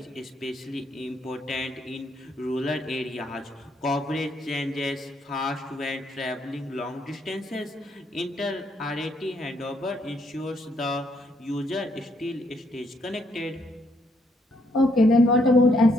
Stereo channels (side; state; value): both; normal; correlation 0.72